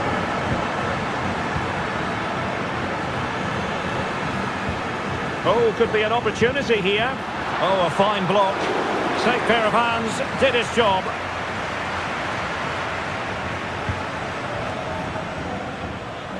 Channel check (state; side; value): identical; both; correlation 1.00